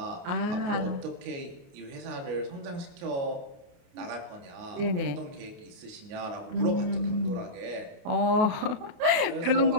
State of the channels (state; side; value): late; left; 28 ms